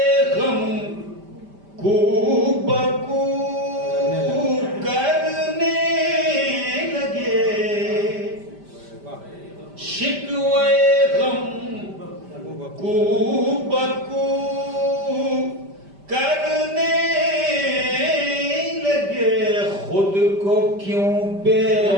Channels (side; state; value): left; late; 5.1 ms